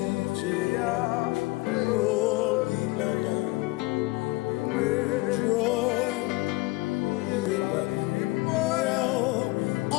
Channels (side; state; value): right; quieter; 23.0 dB